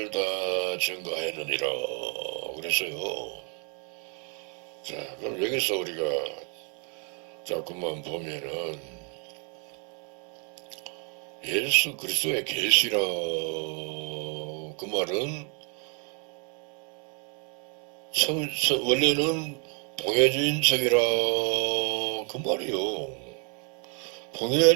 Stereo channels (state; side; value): quieter; left; 37.9 dB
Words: 다 증거하느니라 그랬어요. 자, 그럼 여기서 우리가 자꾸만 보면은 예수 그리스도의 계시라 그 말은 원래는 봉해진 책이라 그 말이요.